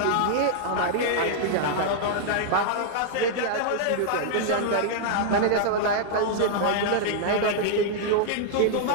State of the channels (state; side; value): different; both; correlation -0.01